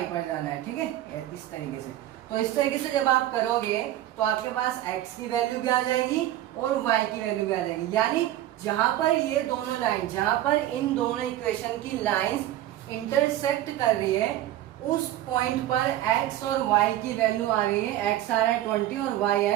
पर जाना है, ठीक है, इस तरीके से। तो इस तरीके से जब आप करोगे तो आपके पास x की वैल्यू भी आ जाएगी और y की वैल्यू भी आ जाएगी, यानी जहां पर ये दोनों लाइन, जहां पर इन दोनों इक्वेशन की लाइंस इंटरसेक्ट कर रही है, उस पॉइंट पर x और y की वैल्यू आ रही है, x आ रहा है 20 और y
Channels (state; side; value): quieter; left; 13.7 dB